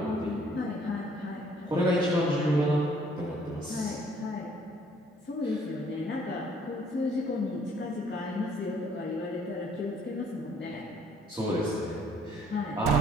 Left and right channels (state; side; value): normal; both; correlation 0.62